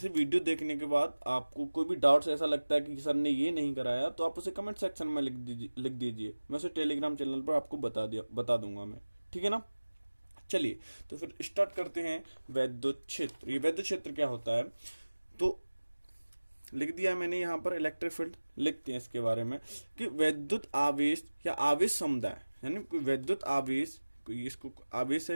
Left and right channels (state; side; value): inverted; both; correlation -1.00